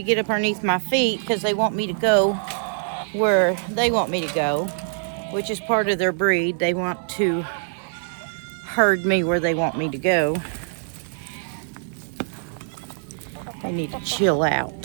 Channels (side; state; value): left; silent; 63 dB below the other